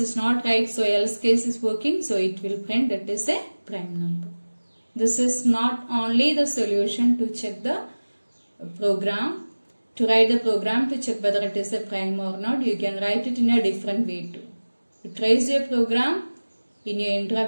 not right, so else case is working, so it will print it is a prime number. This is not only the solution to check the program, to write the program to check whether it is a prime or not. You can write it in a different way too. You trace your program in your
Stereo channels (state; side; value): inverted; both; correlation -1.00